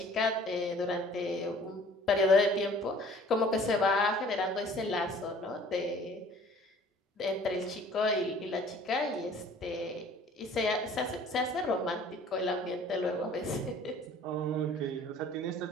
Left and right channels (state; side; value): normal; both; correlation 0.51